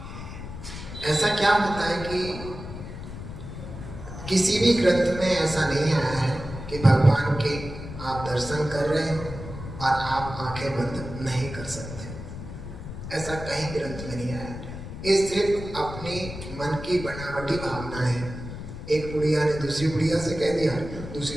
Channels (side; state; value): left; noise; rumble, 10 dB below the sound